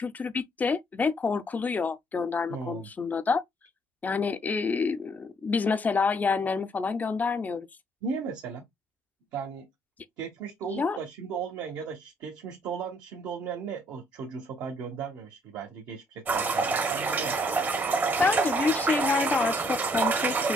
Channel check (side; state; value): both; normal; correlation 0.66